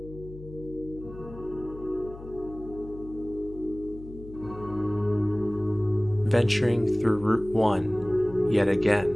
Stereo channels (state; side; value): noise; left; hum, 15 dB below the sound